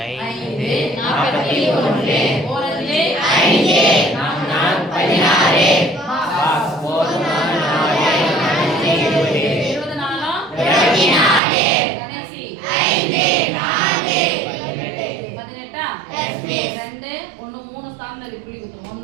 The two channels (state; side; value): drops out; left; at 11.4 s